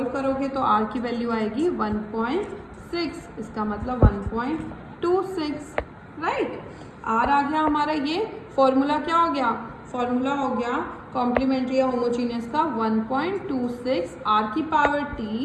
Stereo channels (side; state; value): both; identical; correlation 1.00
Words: करोगे तो r की वैल्यू आएगी 1.6, इसका मतलब 1.26, राइट। r आ गया हमारा, ये फॉर्मूला क्या हो गया, फॉर्मूला हो गया कॉम्प्लीमेंट्री या होमोजीनियस का 1.26 r की power t